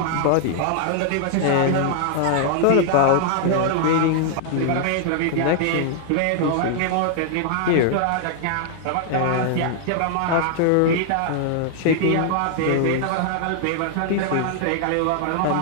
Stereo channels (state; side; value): different; both; correlation 0.00